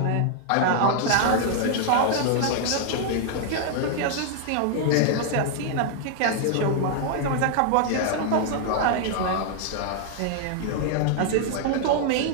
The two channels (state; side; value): different; both; correlation 0.00